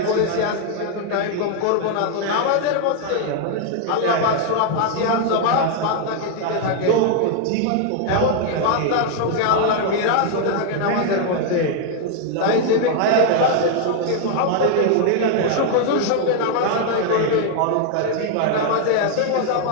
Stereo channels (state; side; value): different; both; correlation 0.00